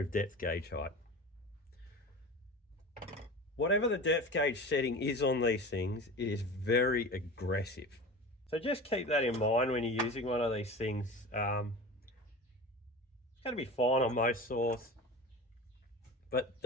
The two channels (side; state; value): both; normal; correlation 0.33